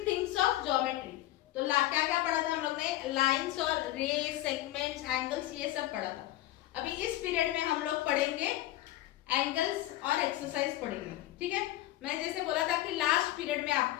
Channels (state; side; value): quieter; right; 15.5 dB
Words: things of geometry. तो क्या क्या पढ़ा था हम लोग ने? लाइंस और रेस, सेगमेंट्स, एंगल्स, ये सब पढ़ा था. अभी इस पीरियड में हम लोग पढ़ेंगे एंगल्स और एक्सरसाइज पढ़ेंगे. ठीक है, मैं जैसे बोला था कि लास्ट पीरियड में